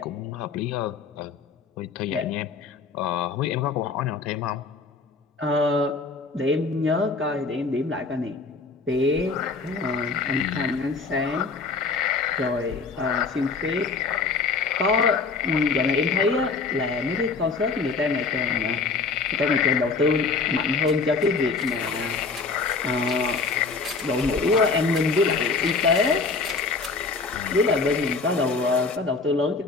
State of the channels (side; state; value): right; quieter; 4.3 dB